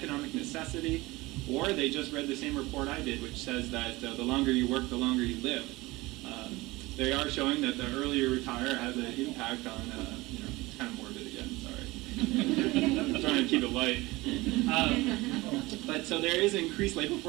necessity, or they just read the same report I did, which says that the longer you work, the longer you live. They are showing that the earlier you retire has an impact on, it's kind of morbid again, sorry. I'm trying to keep it light. But so there is increased labor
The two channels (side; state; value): left; quieter; 21.2 dB